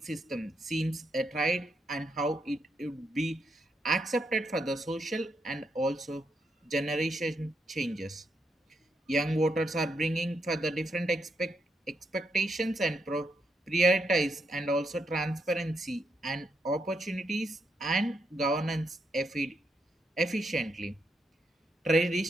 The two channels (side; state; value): both; normal; correlation 0.79